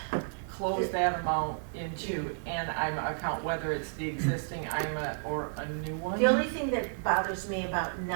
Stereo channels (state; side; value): silent; left; digital silence